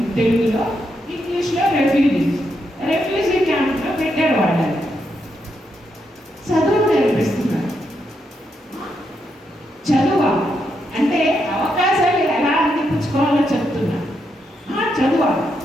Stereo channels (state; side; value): normal; both; correlation 0.81